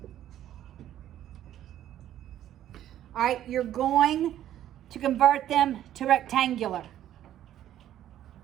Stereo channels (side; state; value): left; quieter; 11.9 dB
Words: All right, you're going to convert them to rectangular.